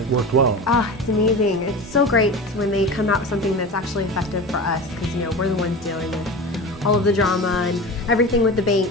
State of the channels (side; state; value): both; normal; correlation 0.30